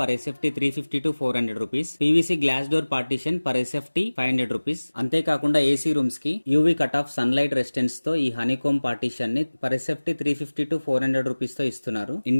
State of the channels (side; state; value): both; inverted; correlation -1.00